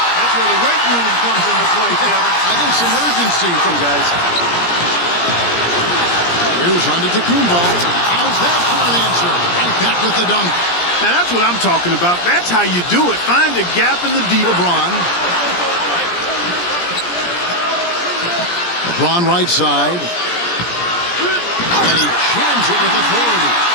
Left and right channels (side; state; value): right; late; 17 ms